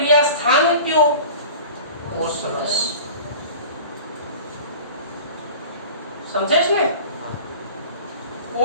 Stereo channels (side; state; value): both; inverted; correlation -0.40